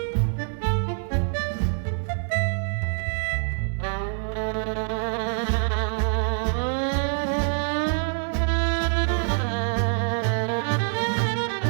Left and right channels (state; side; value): silent; left; 62 dB below the other